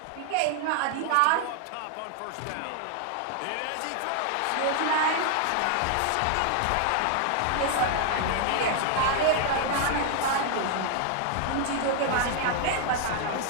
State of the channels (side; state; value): both; different; correlation 0.00